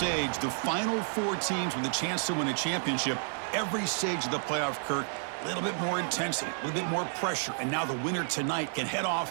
the final 4 teams with a chance to win a championship. Every stage of the playoff, Kirk, a little bit more intensity, a little bit more pressure, and now the winner tonight can head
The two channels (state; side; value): silent; left; digital silence